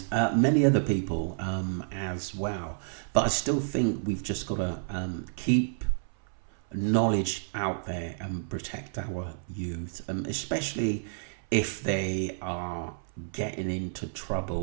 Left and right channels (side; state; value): left; silent; 58 dB below the other